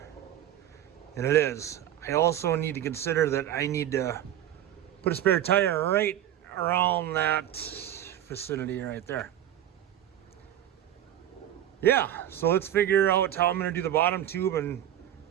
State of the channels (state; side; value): quieter; left; 11.6 dB